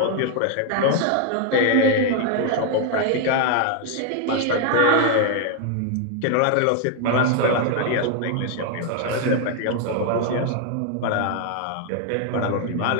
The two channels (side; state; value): both; different; correlation 0.00